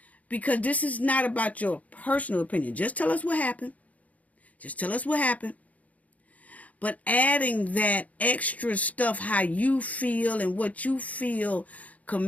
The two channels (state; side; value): late; right; 0.071 ms